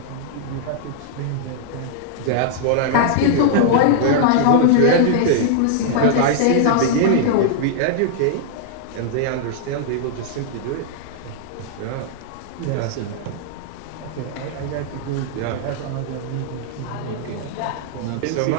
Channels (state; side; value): different; both; correlation -0.01